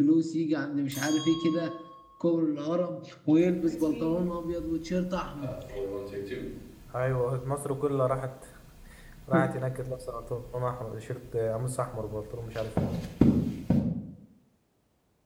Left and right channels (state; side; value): identical; both; correlation 1.00